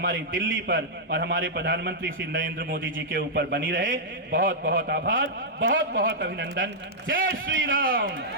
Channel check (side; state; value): both; normal; correlation -0.08